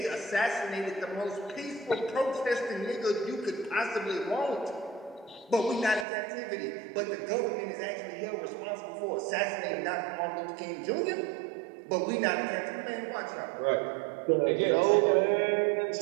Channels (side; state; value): left; drops out; at 6.1 s